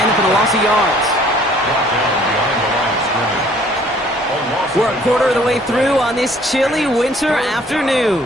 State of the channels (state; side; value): normal; both; correlation 0.57